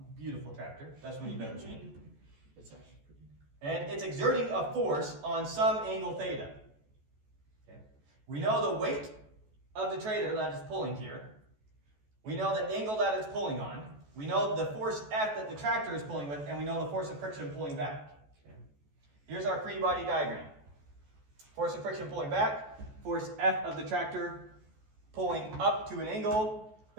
Beautiful tractor. That's when you better machine. It's actually pretty. And it's exerting a force on some angle theta. Okay. We know the weight of the trailer that is pulling here. We know the angle that it's pulling on. We know the force F that the tractor is pulling with, and we know the force of friction pulling back. Okay. Here's our free body diagram. Force of friction pulling back, force F of the tractor pulling up to an angle.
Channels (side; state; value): left; late; 14 ms